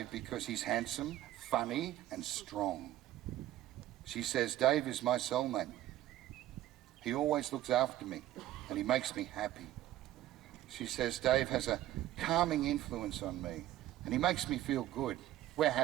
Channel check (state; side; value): quieter; left; 14.0 dB